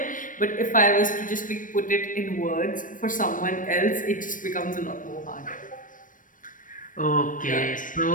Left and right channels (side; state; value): right; late; 0.38 ms